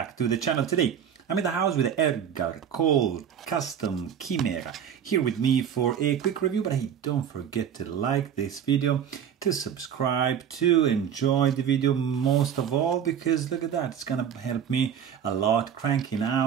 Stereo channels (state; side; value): quieter; left; 8.5 dB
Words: to the channel. Today I'm in the house with Edgar Cole Chimera here with me for a quick review, but hey, don't forget to like this video, to subscribe, to enjoy the video most of all, because look at that, it's gonna help me a lot cranking